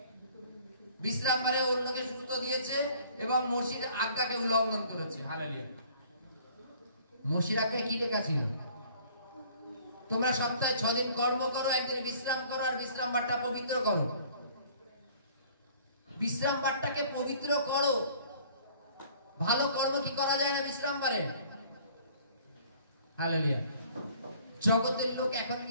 বিশ্রামবারে অন্যকে সুস্থ দিয়েছে এবং মসির আজ্ঞাকে উল্লঙ্ঘন করেছে। হালেলুয়া। মসির আজ্ঞায় কি লেখা ছিল? তোমরা সপ্তাহে 6 দিন কর্ম করো, একদিন বিশ্রাম করো, আর বিশ্রাম বারটা পবিত্র করো। বিশ্রাম বারটাকে পবিত্র করো। ভালো কর্ম কি করা যায় না বিশ্রাম বারে? হালেলুয়া। জগতের লোক এখন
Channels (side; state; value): both; inverted; correlation -0.54